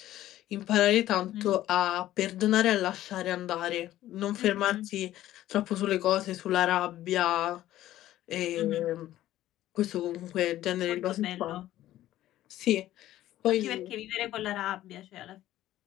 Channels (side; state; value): right; quieter; 14.0 dB